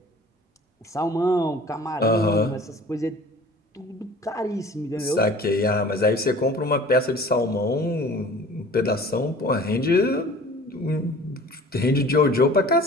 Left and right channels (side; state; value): both; normal; correlation 0.45